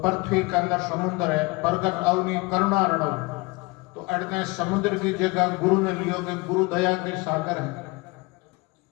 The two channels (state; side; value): quieter; right; 25.0 dB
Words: के अंदर समुद्र है। प्रगट अवनी करुणा रणव, तो अड़ने समुद्र की जगह गुरु ने लियो कि गुरु दया के सागर है।